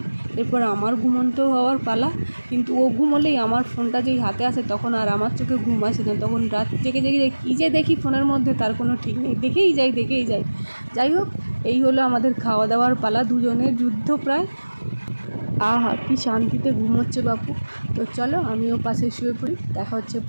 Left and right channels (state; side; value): inverted; both; correlation -1.00